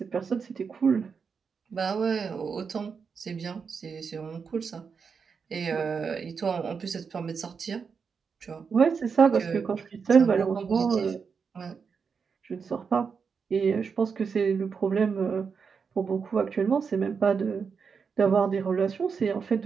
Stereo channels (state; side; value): quieter; left; 5.8 dB